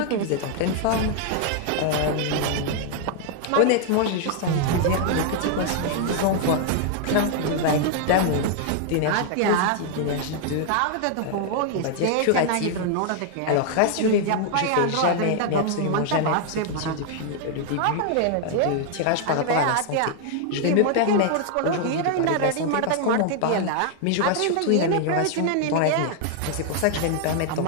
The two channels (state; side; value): different; both; correlation 0.00